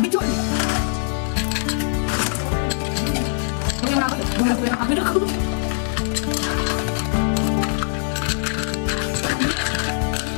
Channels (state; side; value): silent; right; 64 dB below the other